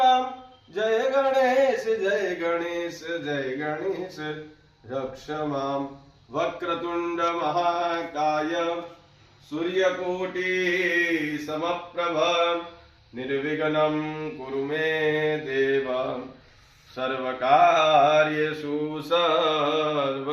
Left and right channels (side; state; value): both; identical; correlation 1.00